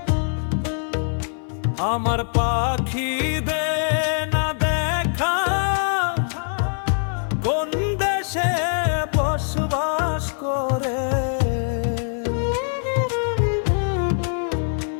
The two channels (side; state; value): right; silent; 59 dB below the other